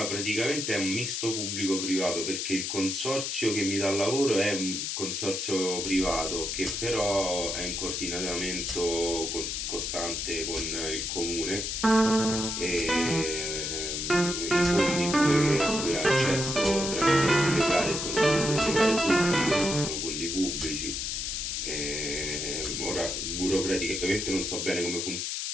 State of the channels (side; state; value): left; noise; hiss, 2 dB below the sound